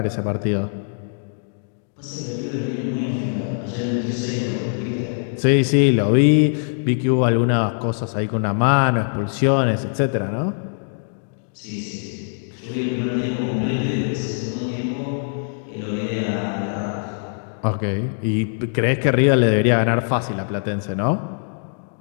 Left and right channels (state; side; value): silent; right; digital silence